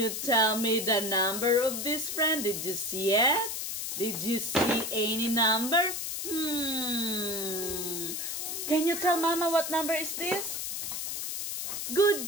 tell me the number of this friend? Did you see it? Did you see any number? Can you tell Mama what number is this? Good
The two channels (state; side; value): noise; left; hiss, 4 dB below the sound